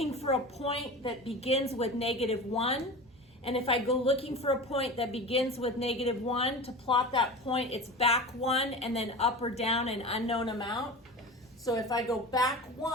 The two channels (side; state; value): both; normal; correlation 0.31